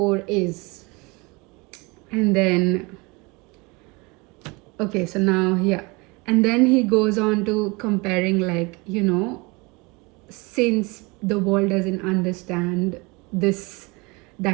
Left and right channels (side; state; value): left; quieter; 26.5 dB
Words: is. And then, okay, so now, yeah. And then he goes on to comparing, like, since the world doesn't understand this